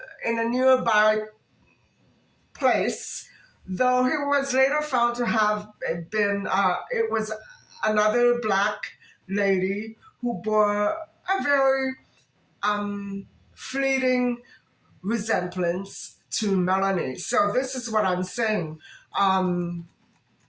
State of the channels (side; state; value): both; identical; correlation 1.00